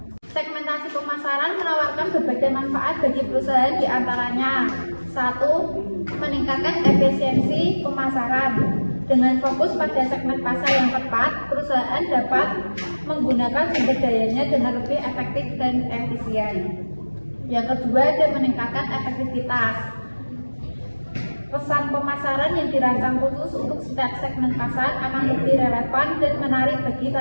Segmentasi pemasaran menawarkan berbagai manfaat bagi perusahaan, diantaranya: 1. Meningkatkan efisiensi pemasaran. Dengan fokus pada segmen pasar yang tepat, perusahaan dapat menggunakan sumber dayanya dengan lebih efektif dan efisien. Yang kedua, ada meningkatkan efektivitas. Pesan pemasaran yang dirancang khusus untuk setiap segmen pasar akan lebih relevan dan menarik bagi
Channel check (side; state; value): both; inverted; correlation -1.00